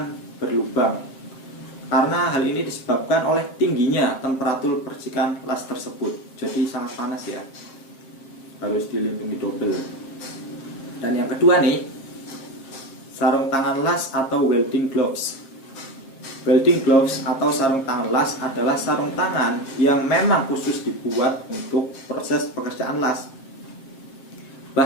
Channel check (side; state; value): right; late; 7.5 ms